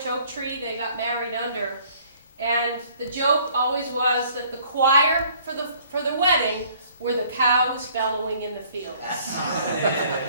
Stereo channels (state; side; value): inverted; both; correlation -0.58